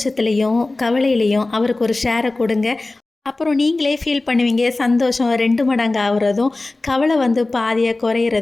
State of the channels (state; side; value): quieter; right; 3.1 dB